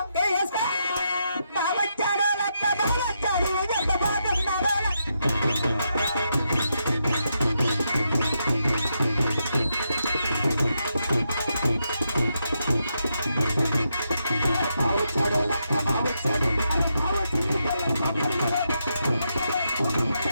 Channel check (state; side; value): inverted; both; correlation -0.82